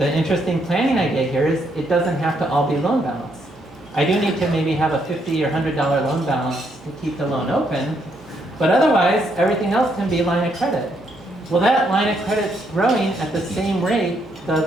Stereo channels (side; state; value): both; normal; correlation 0.74